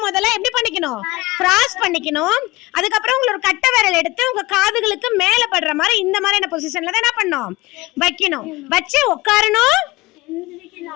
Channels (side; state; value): right; quieter; 20.6 dB